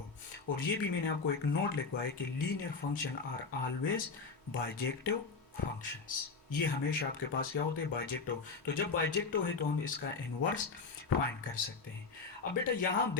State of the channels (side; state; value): right; quieter; 4.5 dB